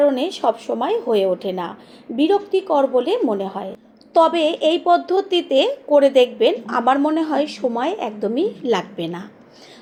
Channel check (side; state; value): both; identical; correlation 1.00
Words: সব সময় হয়ে ওঠে না, বিরক্তিকর বলে মনে হয়। তবে এই পদ্ধতিতে করে দেখবেন, আমার মনে হয় সময় একদমই লাগবে না।